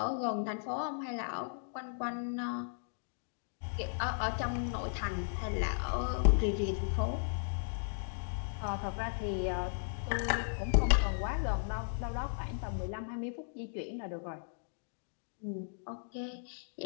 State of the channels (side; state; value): right; silent; digital silence